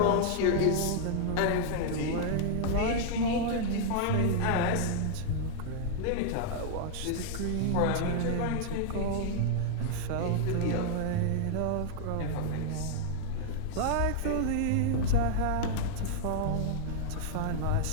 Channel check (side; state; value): both; different; correlation -0.01